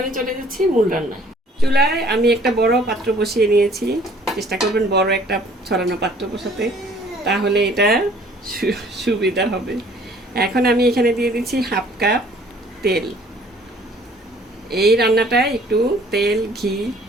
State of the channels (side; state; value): both; normal; correlation 0.56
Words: চলে যাচ্ছি মূল রান্নায়। চুলায় আমি একটা বড় পাত্র বসিয়ে নিয়েছি, চেষ্টা করবেন বড় একটা ছড়ানো পাত্র বসাতে, তাহলে এটা সুবিধা হবে। এখন আমি এখানে দিয়ে দিচ্ছি 1/2 কাপ তেল। এই রান্নাটায় একটু তেল ঘি,